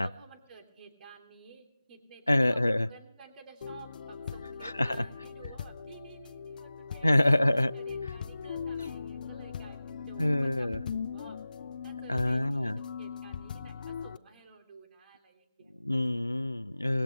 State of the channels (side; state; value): both; inverted; correlation -0.97